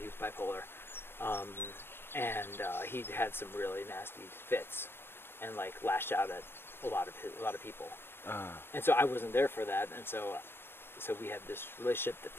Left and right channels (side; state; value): right; late; 0.11 ms